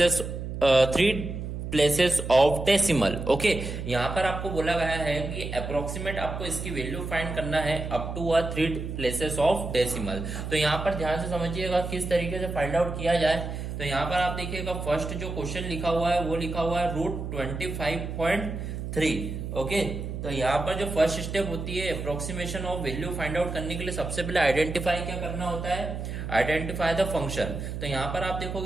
places of decimal. Okay, यहाँ पर आपको बोला गया है कि अप्रोक्सीमेट आपको इसकी वैल्यू फाइंड करना है up to 3 places of decimal. तो यहाँ पर ध्यान से समझिएगा किस तरीके से फाइंड आउट किया जाए। तो यहाँ पर आप देखिएगा फर्स्ट जो क्वेश्चन लिखा हुआ है वो लिखा हुआ है √25.3। ओके, तो यहाँ पर जो फर्स्ट स्टेप होती है approximation of value find out करने के लिए सबसे पहले आइडेंटिफाई क्या करना होता है, आइडेंटिफाई द फंक्शन। तो यहाँ पर आप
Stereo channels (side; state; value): right; noise; hum, 6 dB below the sound